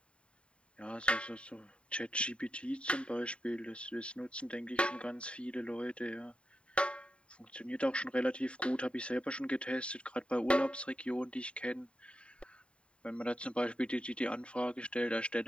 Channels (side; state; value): right; late; 0.057 ms